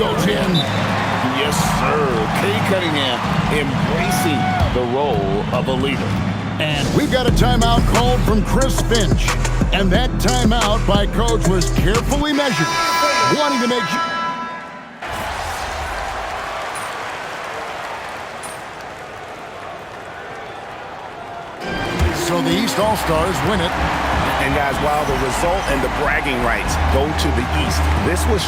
in. Yes, sir. Kay Cunningham embracing the role of a leader. And we've got a timeout called from Chris Finch. And that timeout by Coach was carefully measured, wanting to make sure. So the East All-Stars win it. And guys, while the result and the bragging rights go to the East, this was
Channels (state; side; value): identical; both; correlation 1.00